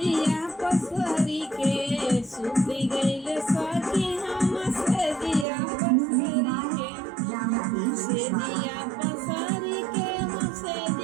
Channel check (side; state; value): left; drops out; at 5.5 s